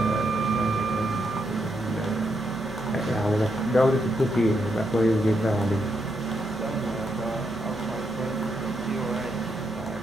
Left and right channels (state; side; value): noise; left; hum, 20 dB below the sound